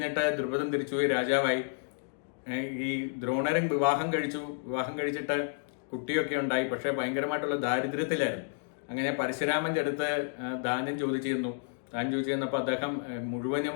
ദ്രുപദൻ തിരിച്ചുപോയി രാജാവായി. ഈ ദ്രോണരും വിവാഹം കഴിച്ചിട്ട് കുട്ടിയൊക്കെ ഉണ്ടായി. പക്ഷേ ഭയങ്കരമായിട്ടുള്ള ദാരിദ്ര്യത്തിലായിരുന്നു. അങ്ങനെ പരശുരാമൻ്റെ അടുത്ത് ദാനം ചോദിച്ചിരുന്നു. ദാനം ചോദിച്ചിരുന്നപ്പോൾ അദ്ദേഹം മുഴുവനും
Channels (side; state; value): right; silent; digital silence